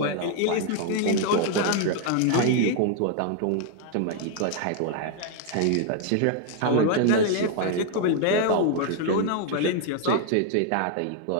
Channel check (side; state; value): both; different; correlation 0.00